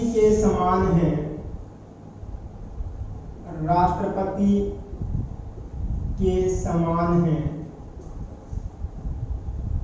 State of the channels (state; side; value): identical; both; correlation 1.00